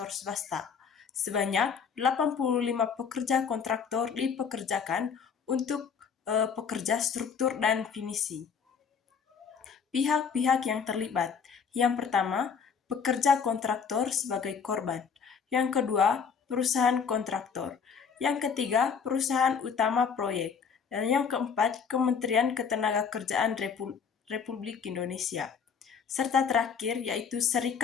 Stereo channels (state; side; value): quieter; right; 6.4 dB